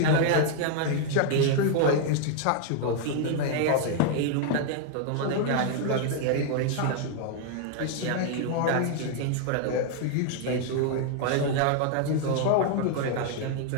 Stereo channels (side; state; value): both; different; correlation 0.00